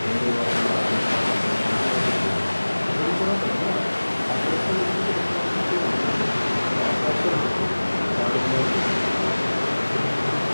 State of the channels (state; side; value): inverted; both; correlation -1.00